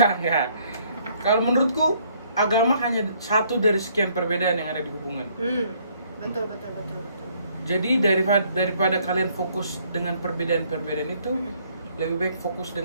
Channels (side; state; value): both; inverted; correlation -0.65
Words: Kalau menurutku agama hanya satu dari sekian perbedaan yang ada di hubungan. Betul. Jadi daripada kalian fokus dengan perbedaan-perbedaan itu, lebih baik fokus